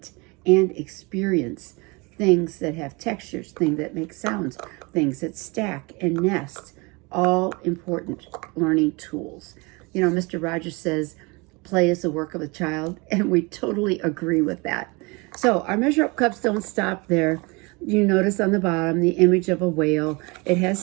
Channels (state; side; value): quieter; left; 27.3 dB